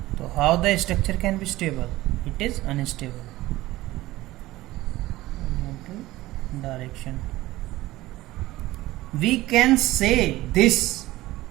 So how the structure can be stable? It is unstable. Horizontal direction. We can say this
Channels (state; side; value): quieter; left; 17.4 dB